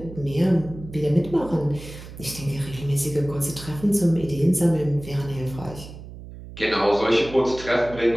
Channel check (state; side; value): noise; right; hum, 14 dB below the sound